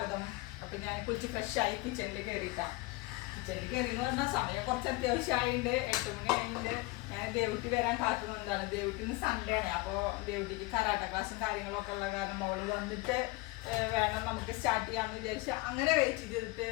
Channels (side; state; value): right; quieter; 21.8 dB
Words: അപ്പോൾ ഞാൻ കുളിച്ച് ഫ്രഷായി കിച്ചണിൽ കയറിയിട്ടാണ്. കിച്ചണിൽ കയറിയെന്ന് പറഞ്ഞാൽ സമയം കുറച്ച് അത്യാവശ്യമായിട്ടുണ്ട്. 8 മണി ആയിട്ടുണ്ട്. ഞാൻ ദേവുട്ടി വരാൻ കാത്തുനിന്നതാണ്. ദേവുട്ടി ഇന്ന് സൺഡേ ആണ്. അപ്പോൾ ദേവുട്ടിക്ക് കരാട്ട ക്ലാസ്സും കാര്യങ്ങളൊക്കെ ഉള്ള കാരണം അവൾ വന്നിട്ട് വേണം നമുക്ക് സ്റ്റാർട്ട് ചെയ്യാമെന്ന് വിചാരിച്ച് അങ്ങനെ വെയിറ്റ് ചെയ്തിട്ട്